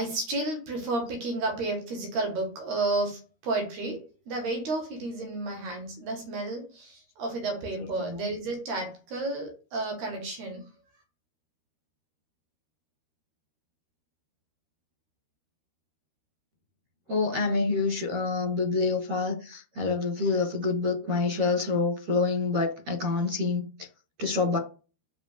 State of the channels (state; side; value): late; left; 13 ms